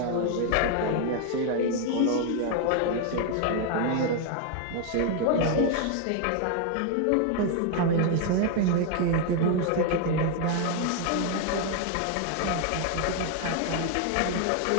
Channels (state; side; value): different; both; correlation 0.00